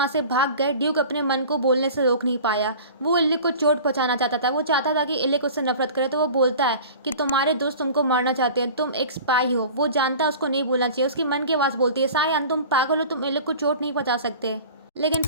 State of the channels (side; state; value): both; inverted; correlation -0.40